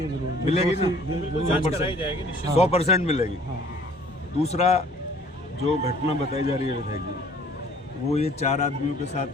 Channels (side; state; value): both; normal; correlation 0.54